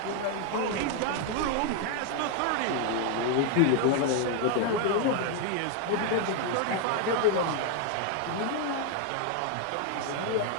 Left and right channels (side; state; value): both; different; correlation 0.00